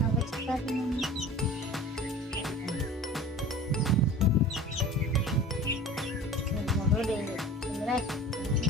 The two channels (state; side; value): normal; both; correlation 0.39